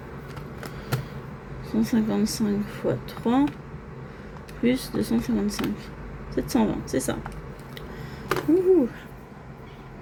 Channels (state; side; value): identical; both; correlation 1.00